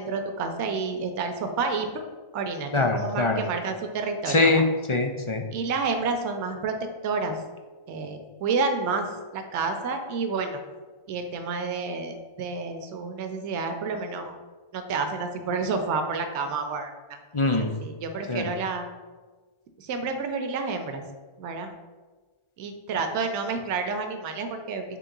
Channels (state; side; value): late; right; 1.4 ms